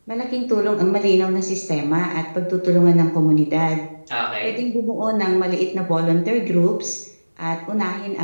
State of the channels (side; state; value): both; inverted; correlation -1.00